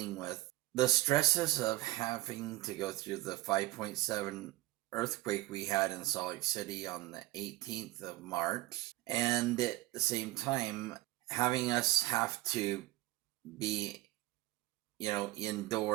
with the stresses of having to go through the 5.7 earthquake we had in Salt Lake City on the 18th of March, and at the same time having us have to be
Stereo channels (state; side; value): quieter; left; 18.5 dB